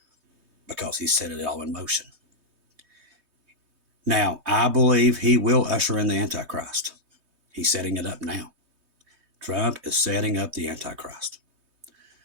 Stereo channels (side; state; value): left; late; 3.2 ms